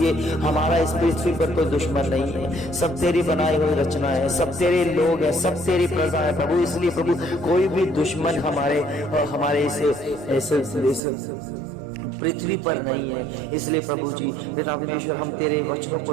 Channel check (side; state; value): left; drops out; at 11.0 s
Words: हमारा इस पृथ्वी पर कोई दुश्मन नहीं है, सब तेरी बनाई हुई रचना है, सब तेरे लोग हैं, सब तेरी प्रजा है प्रभु। इसलिए प्रभु कोई भी दुश्मन हमारे इस पृथ्वी पर नहीं है। इसलिए प्रभु जी परमेश्वर, हम तेरे वचनों